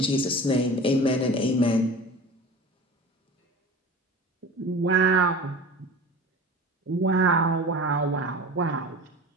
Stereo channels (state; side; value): normal; both; correlation 0.37